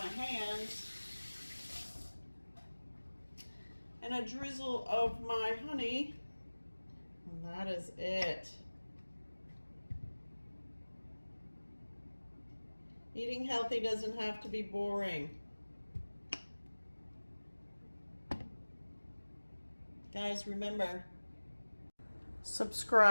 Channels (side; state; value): both; inverted; correlation -1.00